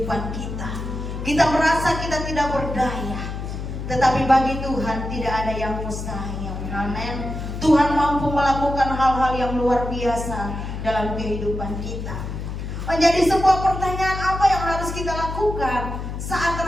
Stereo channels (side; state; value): left; noise; hum, 6 dB below the sound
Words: kita. Kita merasa kita tidak berdaya. Tetapi bagi Tuhan tidak ada yang mustahil. Amin. Tuhan mampu melakukan hal-hal yang luar biasa dalam kehidupan kita. Menjadi sebuah pertanyaan, apa yang harus kita lakukan saat